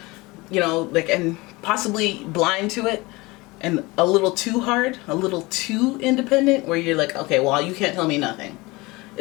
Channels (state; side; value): quieter; right; 23.0 dB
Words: like, and possibly blind to it, and a little too hard, a little too independent, where you're like, okay, well, you can't tell me nothing?